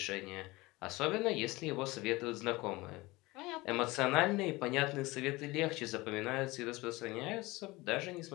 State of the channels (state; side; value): quieter; right; 21.5 dB